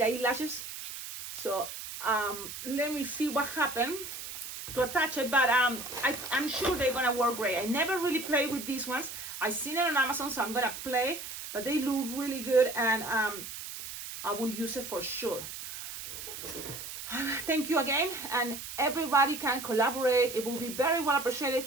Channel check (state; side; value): noise; right; hiss, 9 dB below the sound